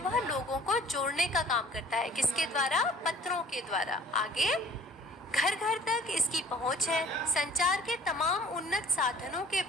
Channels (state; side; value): normal; both; correlation 0.51